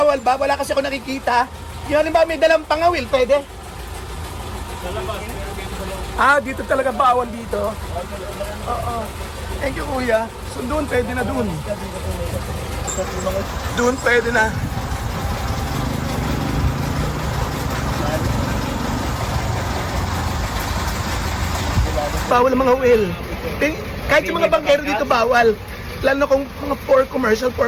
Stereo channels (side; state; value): both; identical; correlation 1.00